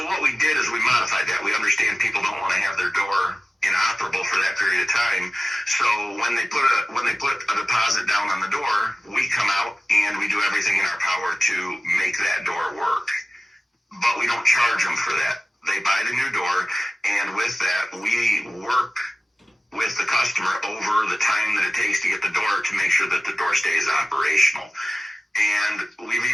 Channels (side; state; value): both; normal; correlation 0.96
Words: what we did is we modified that. We understand people don't want to have their door inoperable for that period of time. So when they put a deposit down on the door, we come out and we do everything in our power to make that door work. But we don't charge them for that. They buy the new door, and with that, we work with the customer over the time that it takes to get the door to make sure that the door stays operational. And we've